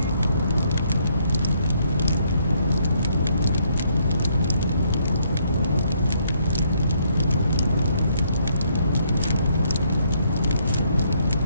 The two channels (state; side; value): inverted; both; correlation -0.71